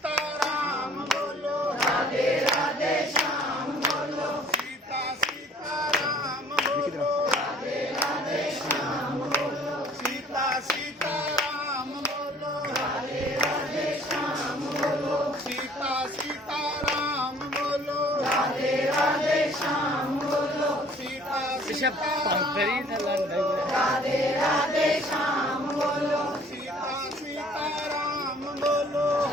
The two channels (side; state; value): both; normal; correlation 0.55